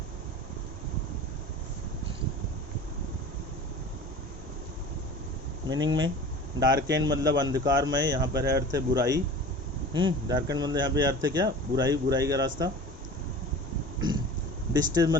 मीनिंग में डार्केन मतलब अंधकारमय, यहाँ पर है अर्थ है बुराई। डार्केन मतलब यहाँ पे अर्थ है क्या, बुराई का रास्ता। डिस्ट्रेस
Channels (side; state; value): both; normal; correlation 0.39